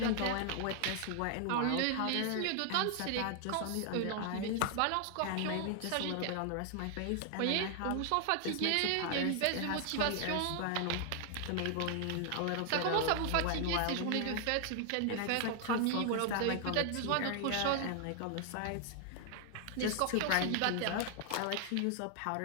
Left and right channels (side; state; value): both; different; correlation 0.00